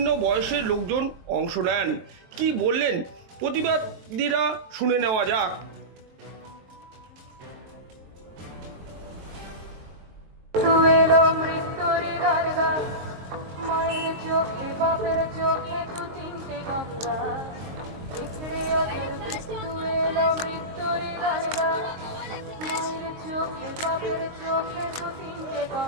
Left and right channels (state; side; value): late; left; 23 ms